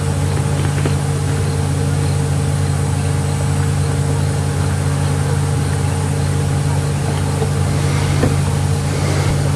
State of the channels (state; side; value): identical; both; correlation 1.00